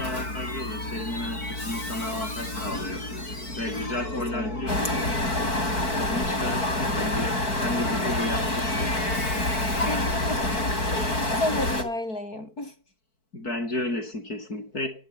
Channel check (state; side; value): late; right; 4.6 ms